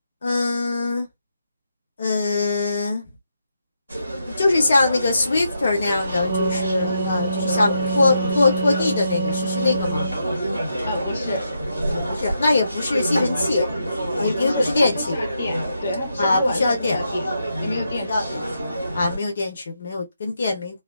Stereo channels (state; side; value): inverted; both; correlation -0.83